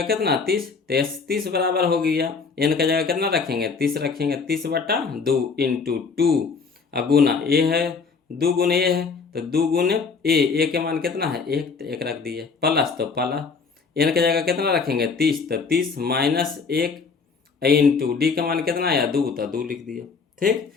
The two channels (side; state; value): right; quieter; 5.1 dB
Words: कितना 30, तो एस 30 बराबर हो गया। n की जगह कितना रखेंगे 30 रखेंगे, 30/2 इंटू 2 गुना ए है 2 गुने ए है तो 2 गुने ए के मान कितना है 1, तो 1 रख दिए प्लस, तो प्लस n की जगह कितना रखेंगे 30, तो 30 माइनस 1 इंटू डी का मान कितना आया 2, तो 2 लिख दिए। ठीक,